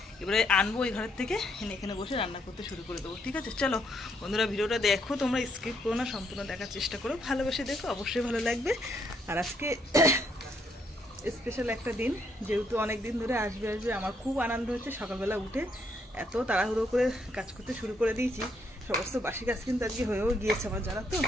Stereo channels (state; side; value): normal; both; correlation 0.73